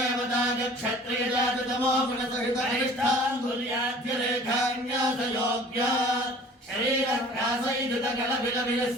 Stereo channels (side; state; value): both; normal; correlation 0.48